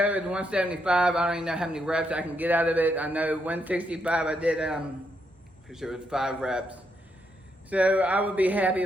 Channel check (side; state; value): both; normal; correlation 0.78